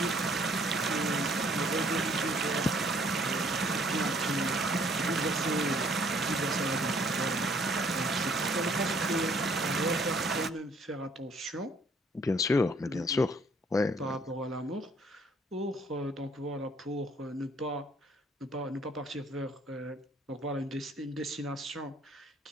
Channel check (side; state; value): both; normal; correlation 0.62